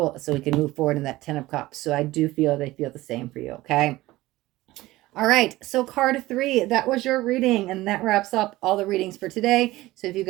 so we can move forward in that 10 of Cups. So I do feel they feel the same for you, okay? All right, so card 3, that was your reading, and that wraps up all the readings for today. So if you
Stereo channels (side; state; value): left; quieter; 17.9 dB